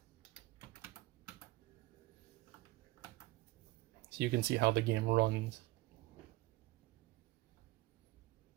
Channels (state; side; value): quieter; left; 19.3 dB